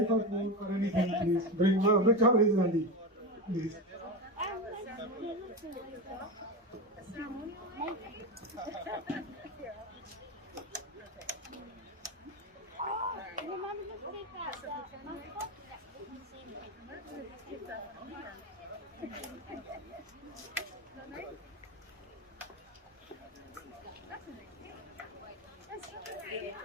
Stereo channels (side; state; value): both; normal; correlation 0.18